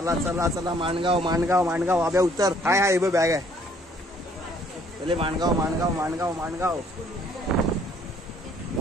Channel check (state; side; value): normal; both; correlation 0.62